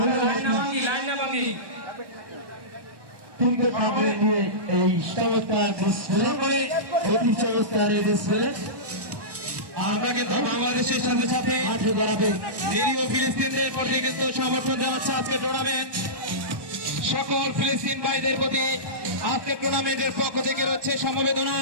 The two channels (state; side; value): late; left; 1.2 ms